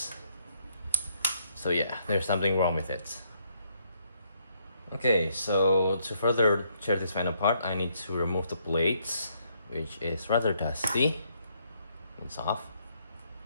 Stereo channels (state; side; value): inverted; both; correlation -0.72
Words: So yeah, there's something wrong with it. Okay, so to further tear this fan apart, I need to remove the blades, which is rather dusty. It's off.